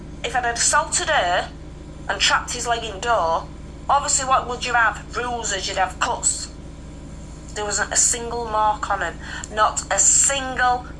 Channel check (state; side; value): identical; both; correlation 1.00